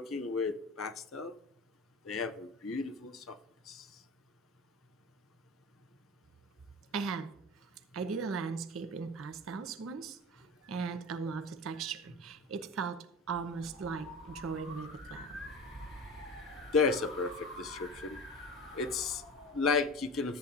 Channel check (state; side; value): normal; both; correlation 0.33